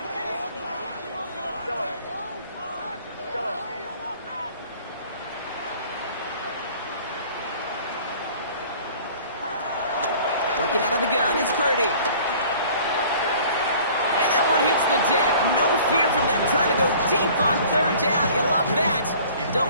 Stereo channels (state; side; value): inverted; both; correlation -0.50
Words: Working out of the gun, it's Purdy. And that one hits the deck. No fear from them trying to go deep on 3rd down. You love that. Don't